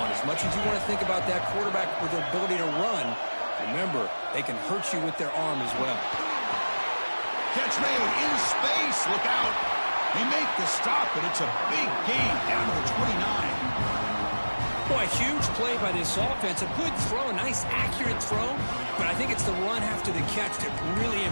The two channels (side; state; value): both; inverted; correlation -1.00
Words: As much as you want to think about that quarterback with their ability to run, remember, they can hurt you with their arm as well. Catch made in space. Look out. They make the stop, but it's a big gain down to the 29. Boy, a huge play by this offense. A good throw, a nice accurate throw. But I think it's the run after the catch that really